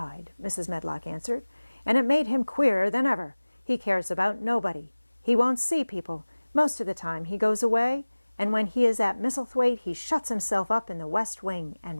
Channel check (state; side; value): inverted; both; correlation -1.00